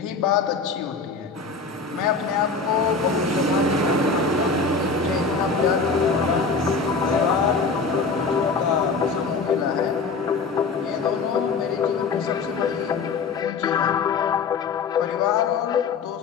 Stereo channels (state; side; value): quieter; right; 4.6 dB